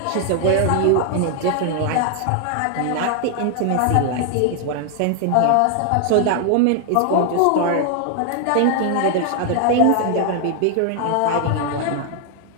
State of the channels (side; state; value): both; different; correlation 0.00